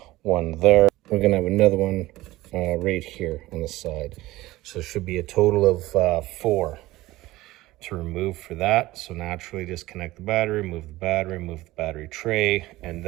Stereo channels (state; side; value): quieter; left; 17.9 dB